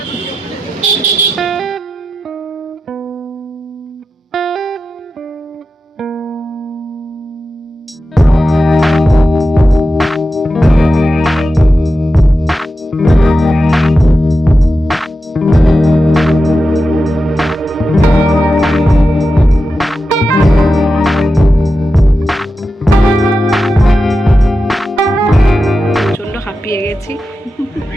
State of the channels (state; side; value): normal; both; correlation 0.91